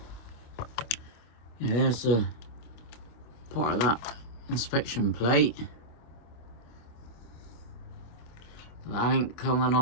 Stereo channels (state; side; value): late; right; 25 ms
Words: Yeah, there's a part of that inspection plate. That ain't coming